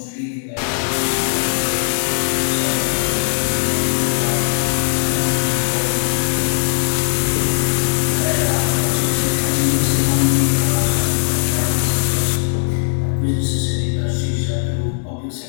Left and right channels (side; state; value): right; silent; digital silence